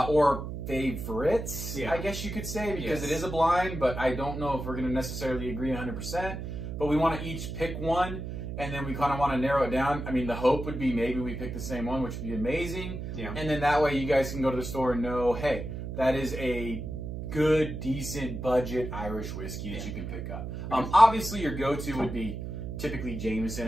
favorites, I guess you could say, because it is a blind, but I don't know if we're going to necessarily agree 100%. But we want to each pick one, and then we kind of want to narrow it down. I mean, the hope would be maybe we pick the same one, which would be amazing. Yeah. And then that way you guys can go to the store and know, hey, that is a good, decent, budget Irish whiskey that you can pick up. Obviously, your go-to would be typically Jameson,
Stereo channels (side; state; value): right; noise; hum, 6 dB below the sound